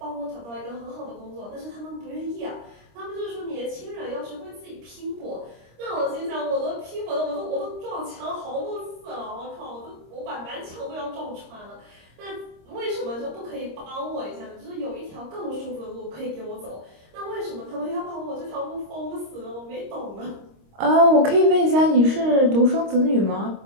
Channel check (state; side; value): late; left; 26 ms